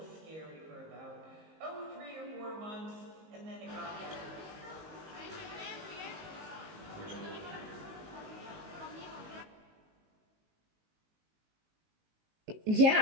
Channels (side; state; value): left; late; 19 ms